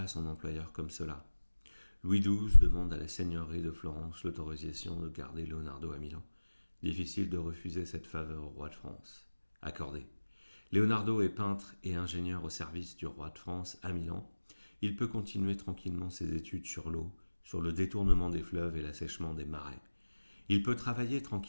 son employeur comme cela. Louis XII demande à la seigneurie de Florence l'autorisation de garder Leonardo à Milan. Difficile de refuser cette faveur au roi de France. Accordé. Leonardo est peintre et ingénieur au service du roi de France à Milan. Il peut continuer tranquillement ses études sur l'eau, sur le détournement des fleuves et l'assèchement des marais. Il peut travailler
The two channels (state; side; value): inverted; both; correlation -1.00